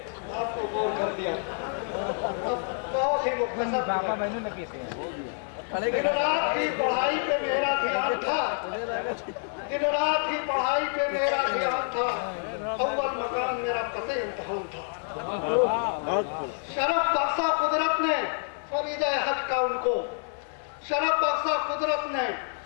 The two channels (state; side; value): silent; right; 59 dB below the other